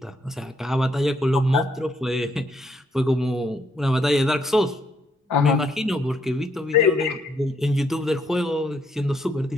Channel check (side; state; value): both; normal; correlation 0.72